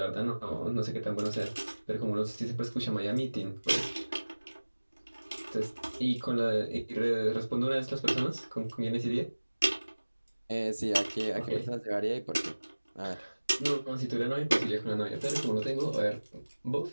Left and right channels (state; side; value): inverted; both; correlation -1.00